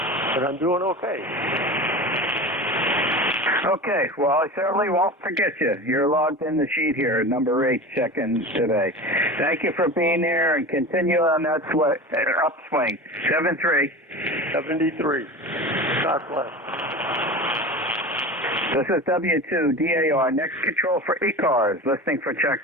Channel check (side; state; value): both; normal; correlation 0.31